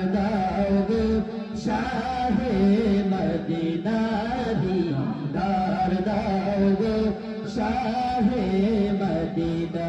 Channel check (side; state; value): both; identical; correlation 1.00